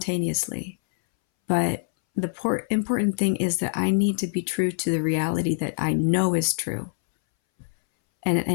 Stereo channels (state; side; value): silent; right; 62 dB below the other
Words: But the important thing is that I need to be true to the reality that I know is true,